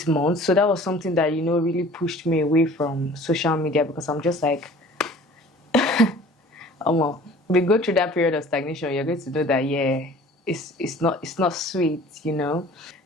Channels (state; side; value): normal; both; correlation 0.47